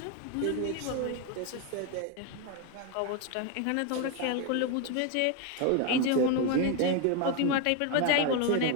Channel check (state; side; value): different; both; correlation 0.01